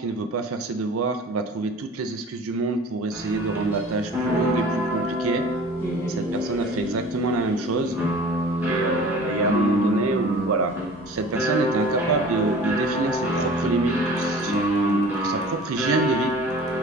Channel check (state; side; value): normal; both; correlation 0.43